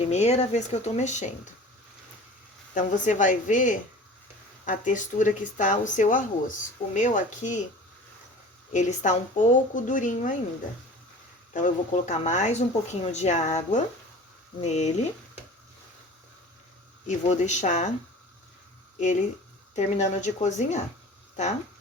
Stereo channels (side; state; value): both; normal; correlation 0.41